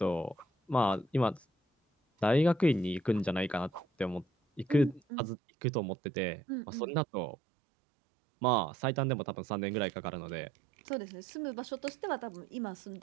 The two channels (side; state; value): left; drops out; at 5.0 s